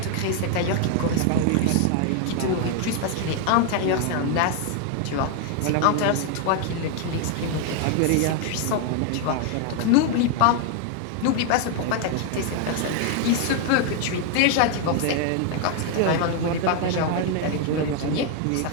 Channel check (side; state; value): both; different; correlation 0.00